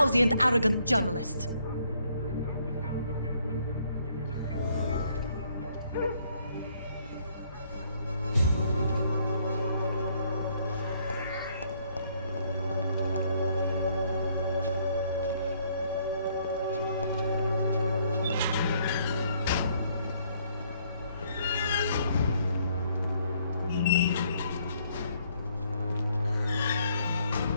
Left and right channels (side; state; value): both; inverted; correlation -0.67